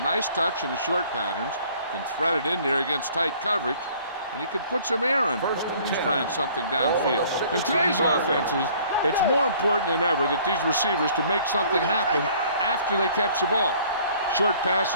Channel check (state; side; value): inverted; both; correlation -0.55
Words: touch in the short patterns, can thread it in there against tight coverage, and he can put some air in when he's trying something downfield. In today's offenses, it's more important than ever that these receivers to make something happen after they catch the ball. Short